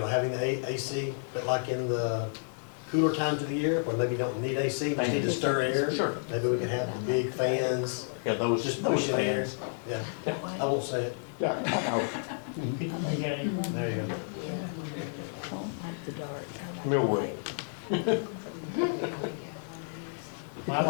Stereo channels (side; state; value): right; silent; digital silence